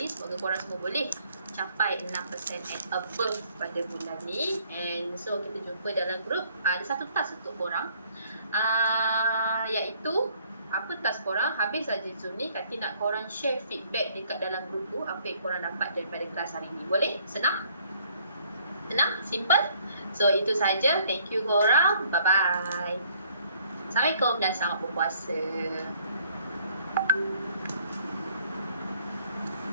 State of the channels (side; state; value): both; inverted; correlation -0.62